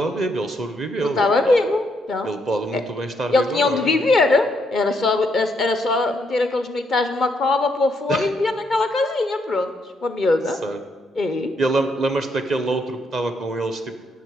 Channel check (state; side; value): normal; both; correlation 0.75